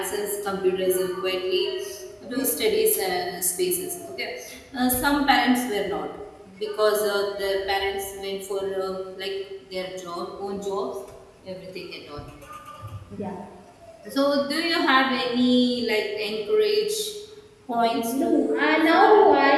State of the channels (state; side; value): identical; both; correlation 1.00